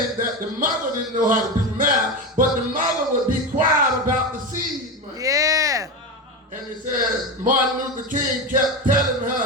that the mother didn't know how to do math, but the mother would be quiet about the seed money. Yeah. And it said Martin Luther King kept telling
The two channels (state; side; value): normal; both; correlation 0.19